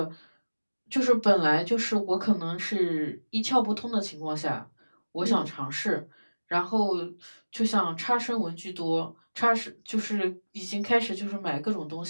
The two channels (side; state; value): both; inverted; correlation -1.00